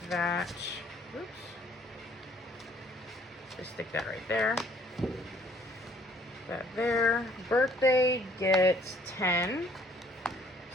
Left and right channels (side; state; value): both; normal; correlation 0.60